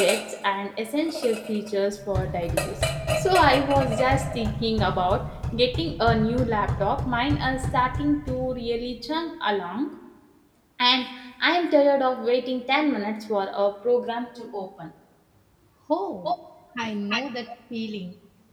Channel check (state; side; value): identical; both; correlation 1.00